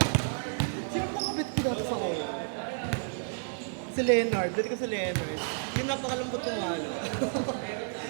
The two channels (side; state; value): left; silent; 57 dB below the other